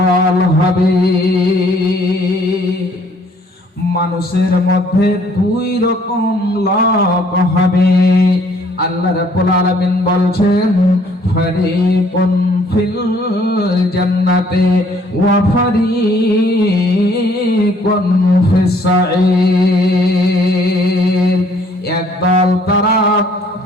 হবে। মানুষের মধ্যে দুই রকম লোক হবে। আল্লাহ রাব্বুল আলামিন বলছেন, ফারিকুন ফিল জান্নাতি ওয়া ফারিকুন ফিস সাঈর। একদল তারা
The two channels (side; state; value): both; normal; correlation 0.62